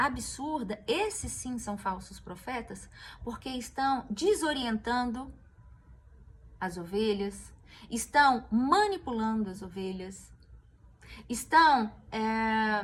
esses sim são falsos profetas, porque estão desorientando as ovelhas, estão manipulando as ovelhas, estão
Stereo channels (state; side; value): identical; both; correlation 1.00